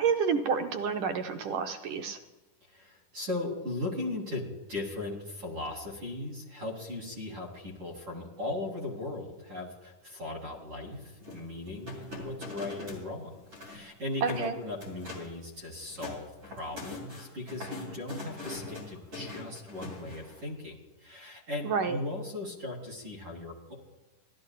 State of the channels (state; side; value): late; left; 10 ms